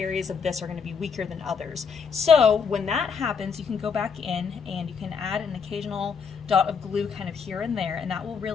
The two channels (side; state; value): right; quieter; 6.1 dB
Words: of this are going to be weaker than others. So when that happens, you can go back in and you can add an occasional dot of glue kind of here and there, and that will